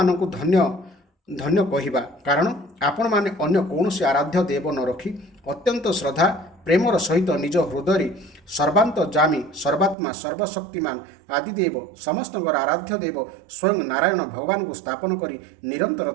ଧନ୍ୟ ଧନ୍ୟ କହିବା, କାରଣ ଆପଣମାନେ ଅନ୍ୟ କୌଣସି ଆରାଧ୍ୟ ଦେବ ନ ରଖି ଅତ୍ୟନ୍ତ ଶ୍ରଦ୍ଧା ପ୍ରେମର ସହିତ ନିଜ ହୃଦୟରେ ସର୍ବାନ୍ତର୍ଯାମୀ ସର୍ବାତ୍ମା ସର୍ବଶକ୍ତିମାନ ଆଦିଦେବ ସମସ୍ତଙ୍କର ଆରାଧ୍ୟ ଦେବ ସ୍ୱୟଂ ନାରାୟଣ ଭଗବାନଙ୍କୁ ସ୍ଥାପନ କରି ନିରନ୍ତର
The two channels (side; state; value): left; drops out; at 10.0 s